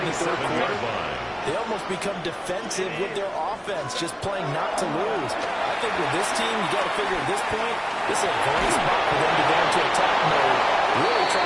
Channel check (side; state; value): both; identical; correlation 1.00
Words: the third quarter, they almost become defensive with their offense, just playing not to lose. I think with this team, you got to figure at this point, this is a great spot for them to go into attack mode, really try